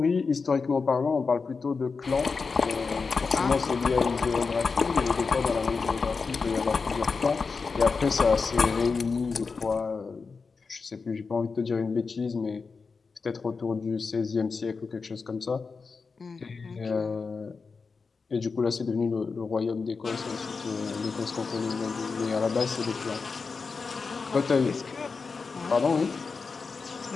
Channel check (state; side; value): quieter; right; 4.8 dB